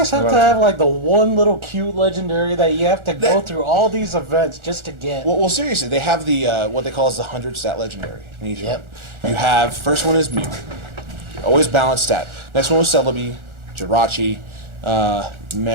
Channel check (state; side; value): late; left; 1.4 ms